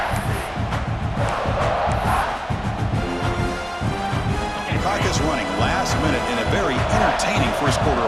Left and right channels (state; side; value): identical; both; correlation 1.00